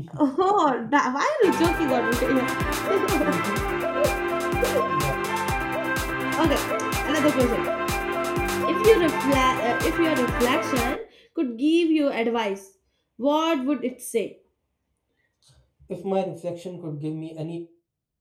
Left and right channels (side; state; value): both; identical; correlation 1.00